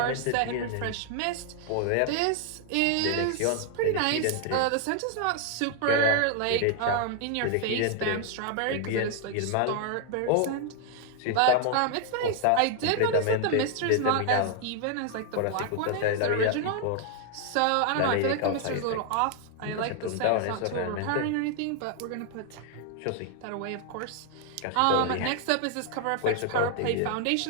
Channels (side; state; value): both; different; correlation 0.00